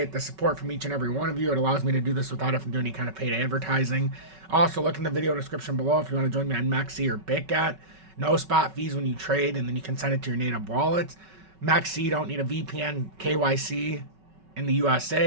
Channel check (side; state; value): left; late; 5.3 ms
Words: the support from each and every one of you. It allows me to do this without having to do any kind of paid advertising. Also, look in the video description below if you want to join me on MEXC or BitGet. No spot fees when you trade, and then you can send it to your native wallets. MEXC, don't need a VPN KYC in the